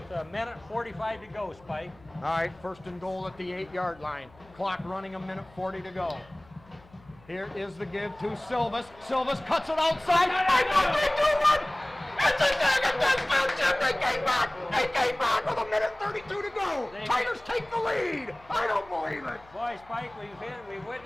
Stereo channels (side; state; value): left; noise; hum, 26 dB below the sound